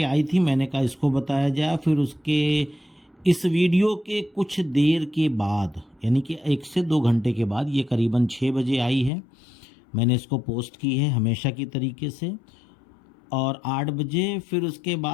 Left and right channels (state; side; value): drops out; right; at 9.1 s